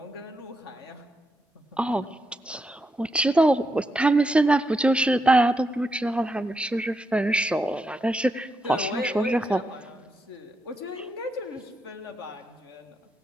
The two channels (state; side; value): normal; both; correlation 0.83